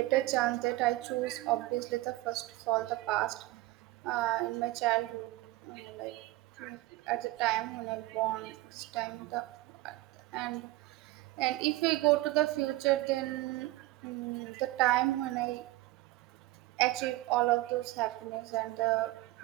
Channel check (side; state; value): left; quieter; 18.3 dB